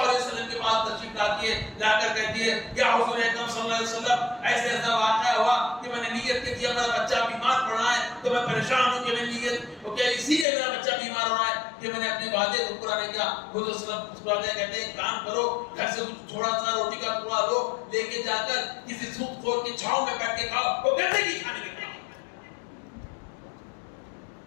علیہ وسلم کے پاس تشریف لاتی ہے، لا کر کہتی ہے یا حضور اکرم صلی اللہ علیہ وسلم ایسے ایسا واقعہ ہوا کہ میں نے نیت کی تھی میرا بچہ بیمار پڑ رہا ہے تو میں پریشان ہوں کہ میں نیت اوکے اسی لیے میرا بچہ بیمار ہو رہا ہے کہ میں نے اپنے وعدے کو پورا نہیں کیا. حضور صلی اللہ علیہ وسلم کہتے ہیں کام کرو گھر سے تھوڑا سا روٹی کا ٹکڑا لو لے کے جا کر کسی سود خور کی چھاؤں میں بیٹھ کے کھاؤ وہ گندے کی کھانے کے کھاؤ.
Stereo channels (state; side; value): drops out; right; at 10.5 s